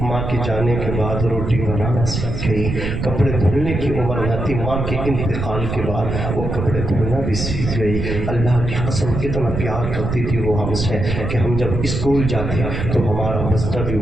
ماں کے جانے کے بعد روٹی بنانا سیکھ گئی۔ کپڑے دھلنے کی عمر نہ تھی، ماں کے انتقال کے بعد وہ کپڑے دھونا بھی سیکھ گئی۔ اللہ کی قسم کتنا پیار کرتی تھی وہ ہم سے کہ ہم جب اسکول جاتے تو ہمارا بستر بھی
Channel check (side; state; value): right; noise; rumble, 4 dB below the sound